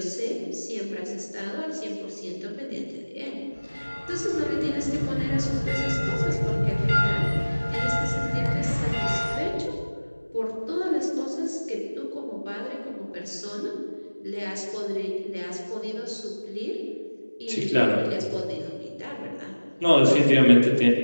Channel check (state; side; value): inverted; both; correlation -1.00